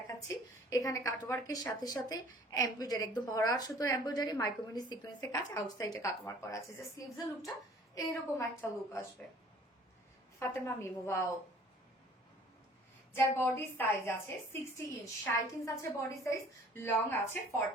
এখানে কাট ওয়ার্কের সাথে সাথে এমব্রয়ডারি, একদম ভরা সুতোর এমব্রয়ডারি, মাইক্রোমিনি সিকোয়েন্সের কাজ, আউটসাইডে কাট ওয়ার্ক করা আছে, যে স্লিভস এর লুকটা এইরকম একটা লুক আসবে। ফাতেমা মিমু, ওয়াও। যার বডি সাইজ আছে 60 ইঞ্চ, 60 ইঞ্চ আছে বডি সাইজ, লং আছে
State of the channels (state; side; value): normal; both; correlation 0.52